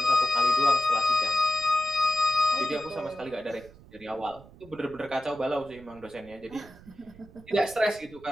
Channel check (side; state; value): right; noise; rumble, 22 dB below the sound